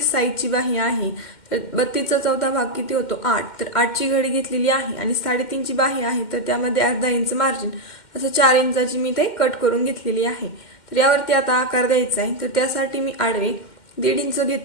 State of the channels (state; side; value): late; right; 2.1 ms